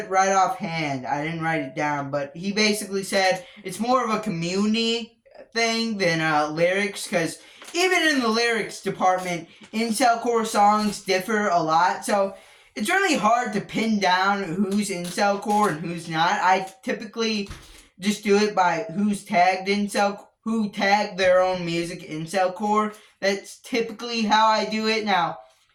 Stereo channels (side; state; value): both; identical; correlation 1.00